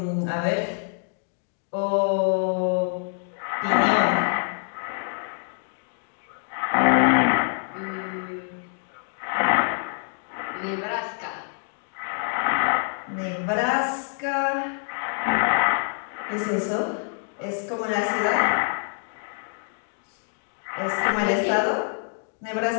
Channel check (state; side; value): silent; right; 61 dB below the other